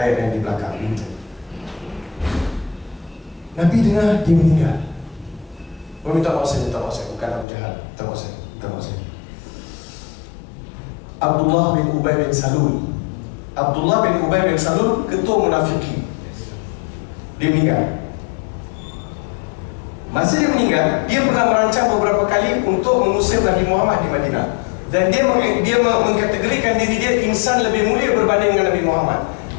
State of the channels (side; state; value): right; drops out; at 7.5 s